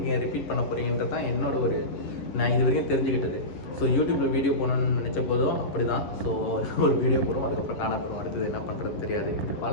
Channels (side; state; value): right; late; 11 ms